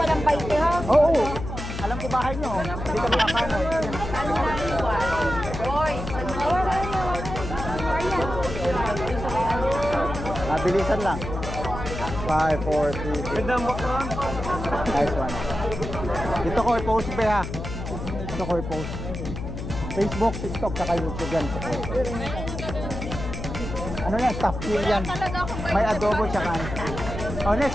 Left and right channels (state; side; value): noise; left; hum, 7 dB below the sound